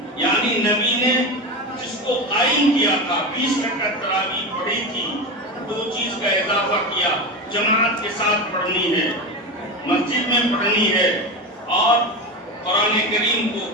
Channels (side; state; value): both; normal; correlation 0.21